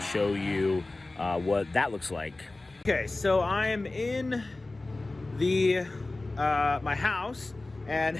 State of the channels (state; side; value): quieter; right; 3.0 dB